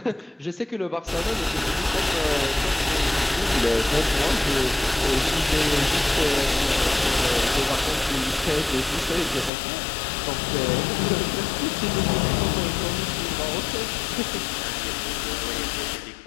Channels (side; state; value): right; drops out; at 9.5 s